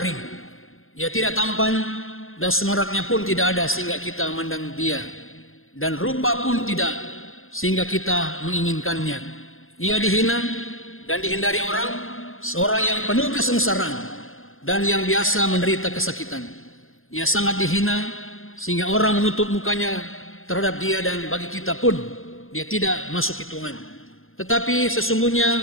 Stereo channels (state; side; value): late; right; 0.60 ms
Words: Ia tidak tampan, dan semaraknya pun tidak ada sehingga kita memandang dia, dan rupa pun tidak sehingga kita menginginkannya. Ia dihina dan dihindari orang, seorang yang penuh kesengsaraan dan yang biasa menderita kesakitan. Ia sangat dihina sehingga orang menutup mukanya terhadap dia, dan bagi kita pun dia tidak masuk hitungan. Tetapi sesungguhnya